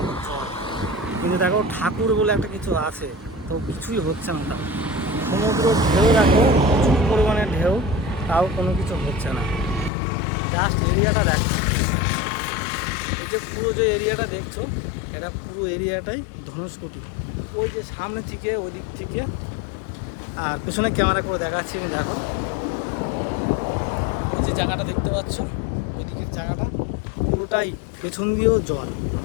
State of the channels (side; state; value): right; drops out; at 9.9 s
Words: জল, কিন্তু দেখো ঠাকুর বলে একটা কিছু আছে, তো কিছুই হচ্ছে না। তাও সমুদ্র ঢেউ দেখো, প্রচুর পরিমাণে ঢেউ, তাও কোনো কিছু হচ্ছে না। জাস্ট এরিয়াটা দেখো, এই যে পুরো যে এরিয়াটা দেখছো, এটা পুরো এরিয়াটাই ধনুষকোটি। ওই যে সামনে থেকে ওই দিক থেকে, আর পেছনে ক্যামেরা করে দেখাচ্ছি আমি। দেখো ওই যে জায়গাটা দেখতে পাচ্ছ, ওই দিকের জায়গাটা পুরোটাই পেছন দিয়েও জল।